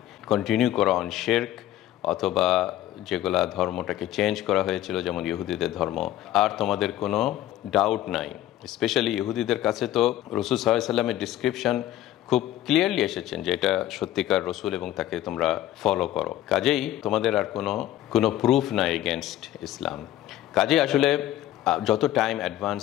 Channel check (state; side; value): quieter; right; 13.5 dB